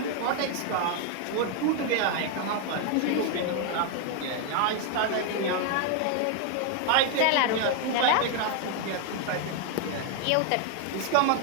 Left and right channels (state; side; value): different; both; correlation 0.00